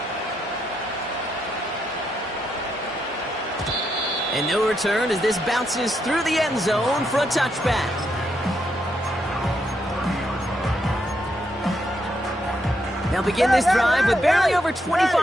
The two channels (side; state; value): both; normal; correlation 0.79